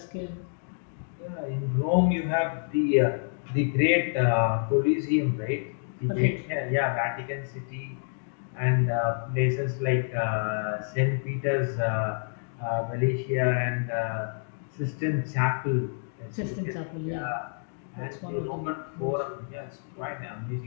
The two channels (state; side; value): silent; right; digital silence